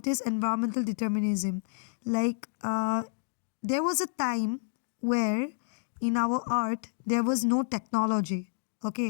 is environmental determinism. There was a time where in our earth there was no technology.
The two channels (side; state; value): right; silent; digital silence